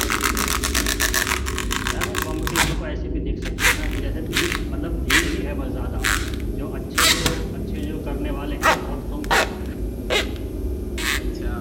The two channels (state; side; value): identical; both; correlation 1.00